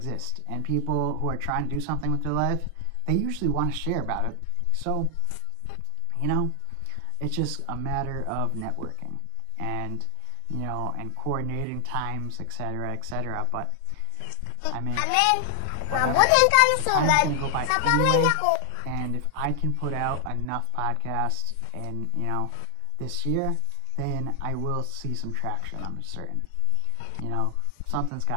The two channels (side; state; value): both; different; correlation 0.00